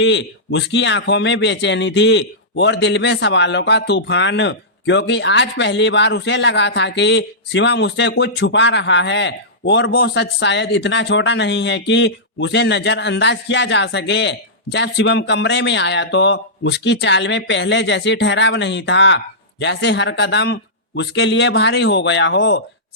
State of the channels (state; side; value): normal; both; correlation -0.15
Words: उसकी आंखों में बेचैनी थी और दिल में सवालों का तूफान, क्योंकि आज पहली बार उसे लगा था कि शिवम उससे कुछ छुपा रहा है और वो सच शायद इतना छोटा नहीं है कि उसे नजरअंदाज किया जा सके। जब शिवम कमरे में आया तो उसकी चाल में पहले जैसी ठहराव नहीं था, जैसे हर कदम उसके लिए भारी हो गया हो।